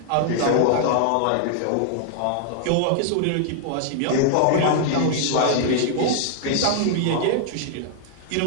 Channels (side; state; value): both; different; correlation -0.01